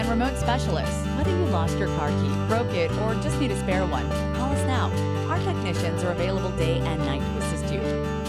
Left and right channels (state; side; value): identical; both; correlation 1.00